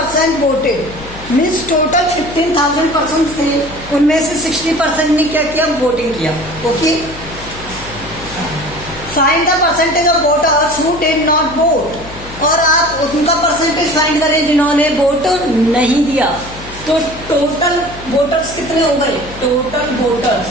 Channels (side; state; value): left; noise; hum, 16 dB below the sound